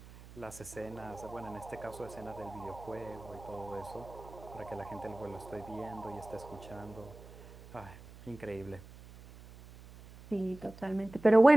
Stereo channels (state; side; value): noise; right; hum, 18 dB below the sound